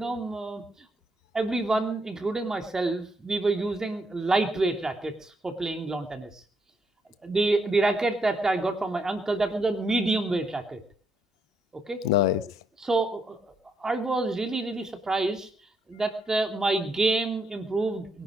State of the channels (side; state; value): both; normal; correlation 0.76